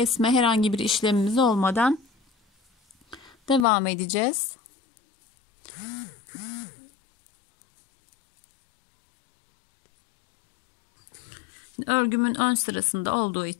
herhangi bir işlemimiz olmadan devam edeceğiz. Şimdi örgümün ön sırasında olduğu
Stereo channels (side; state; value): right; drops out; at 3.7 s